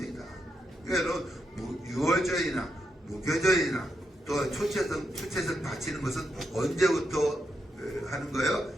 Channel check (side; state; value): both; normal; correlation 0.83